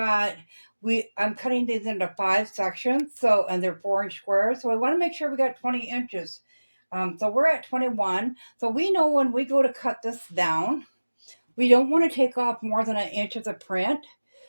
I'm cutting these into 5 sections, so, and they're 4-inch squares. So we want to make sure we got 20 inches. So we're at 21. So we know when we go to cut this down, we don't want to take off more than 1 inch of the print.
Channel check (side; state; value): both; inverted; correlation -1.00